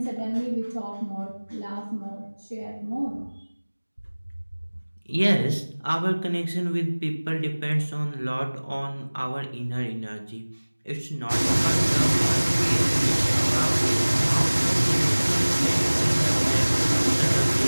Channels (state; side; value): inverted; both; correlation -1.00